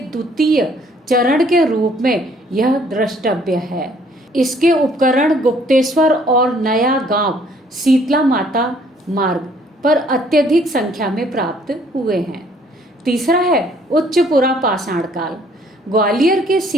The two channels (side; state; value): both; normal; correlation 0.62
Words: चरण के रूप में यह द्रष्टव्य है। इसके उपकरण गुप्तेश्वर और नया गांव शीतला माता मार्ग पर अत्यधिक संख्या में प्राप्त हुए हैं। तीसरा है उच्चपुरा पाषाण काल, ग्वालियर के